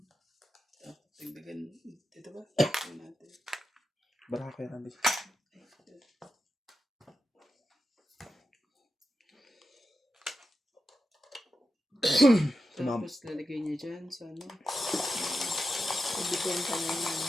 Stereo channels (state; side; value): normal; both; correlation 0.90